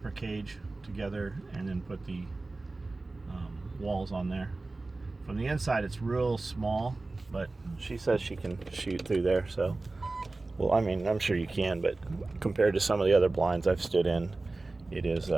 cage together and then put the walls on there. From the inside it's real small, but she says she can shoot through there. So, well, I mean, I'm sure you can, but compared to some of the other blinds I've stood in, it is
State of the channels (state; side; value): quieter; left; 3.3 dB